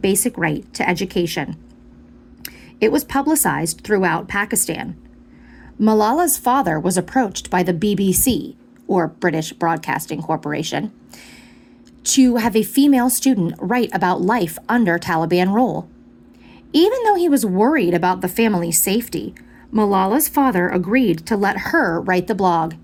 right to education?" It was publicized throughout Pakistan. Malala's father was approached by the BBC, or British Broadcasting Corporation, to have a female student write about life under Taliban rule. Even though he was worried about the family's safety, Malala's father agreed to let her write the blog.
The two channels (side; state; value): both; identical; correlation 1.00